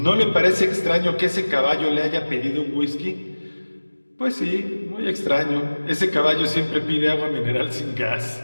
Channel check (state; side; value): inverted; both; correlation -1.00